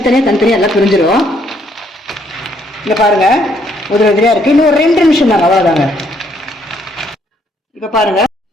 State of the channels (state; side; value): normal; both; correlation 0.69